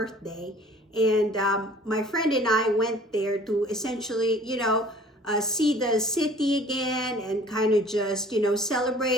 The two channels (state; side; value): normal; both; correlation 0.50